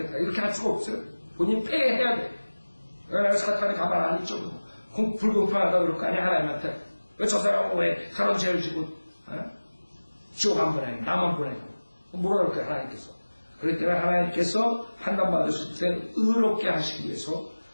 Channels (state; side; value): inverted; both; correlation -1.00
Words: 이렇게 할 수가 없어요. 본인이 폐해야 돼. 내가 사탄이 가만 안 있죠. 불공평하다 그럴 거 아니야 하나님한테. 왜 저 사람은 왜 그런 죄를 지고 지옥 안 보내고 나만 보내고 뭐라 그럴 거야 하나님께서. 그렇기 때문에 하나님께서 판단받으실 때 의롭게 하시기 위해서